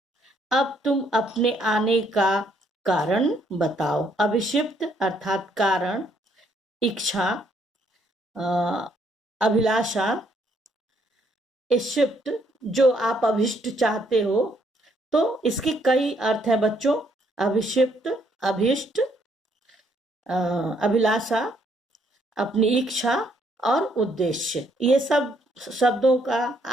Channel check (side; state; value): both; normal; correlation 0.70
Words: अब तुम अपने आने का कारण बताओ। अभिषिप्त अर्थात कारण, इच्छा, अभिलाषा, इष्ट जो आप अभिष्ट चाहते हो, तो इसके कई अर्थ हैं बच्चों। अभिषिप्त, अभिष्ट, अभिलाषा, अपनी इच्छा और उद्देश्य, ये सब शब्दों का